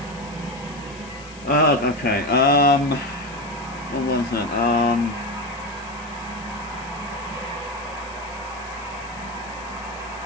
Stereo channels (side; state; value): left; noise; hiss, 20 dB below the sound